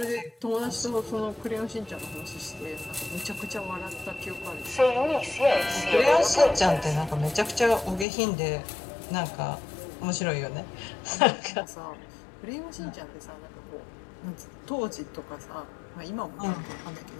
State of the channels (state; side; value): drops out; right; at 8.1 s